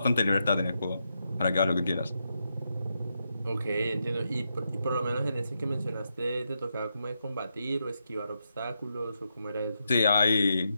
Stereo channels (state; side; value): inverted; both; correlation -0.83